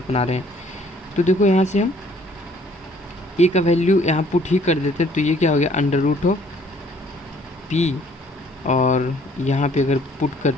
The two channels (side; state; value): both; normal; correlation 0.60